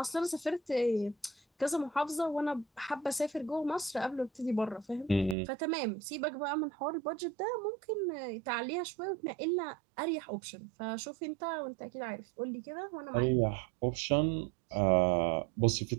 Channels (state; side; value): drops out; left; at 5.4 s